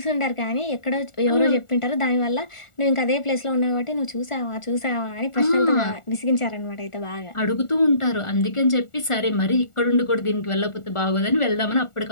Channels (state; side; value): late; right; 1.4 ms